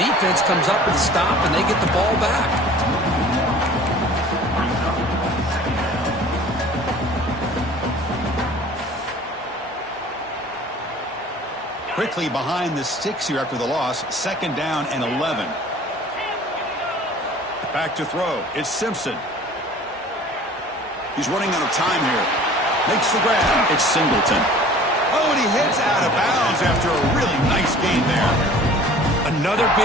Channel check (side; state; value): both; normal; correlation 0.47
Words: defense comes up with a stop and they get the ball back. Quickly behind the sticks here after the loss. 2nd down and 11. Back to throw. It's Simpson. He's running out of time here. Makes the grab. It's Singleton. Oh, and he hits out of bounds after a really nice gain there. Another